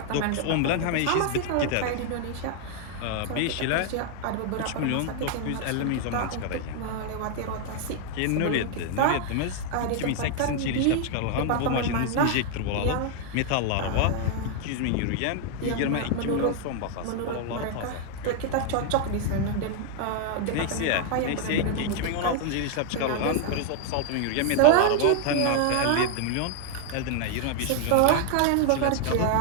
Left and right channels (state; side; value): different; both; correlation 0.00